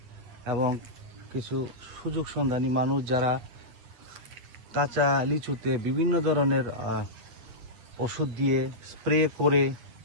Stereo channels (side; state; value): left; late; 8.9 ms